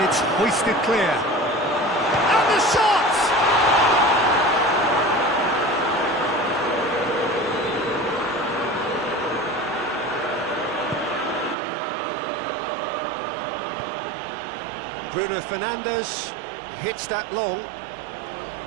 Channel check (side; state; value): left; drops out; at 11.6 s